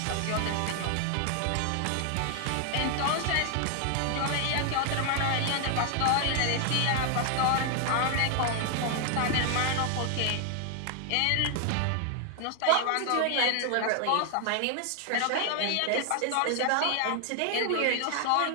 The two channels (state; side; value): different; both; correlation 0.00